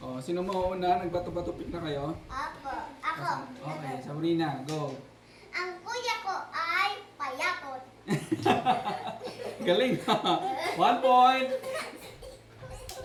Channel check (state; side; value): identical; both; correlation 1.00